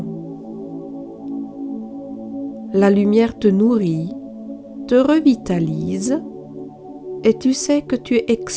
La lumière te nourrit, te revitalise et tu sais que tu es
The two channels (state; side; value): identical; both; correlation 1.00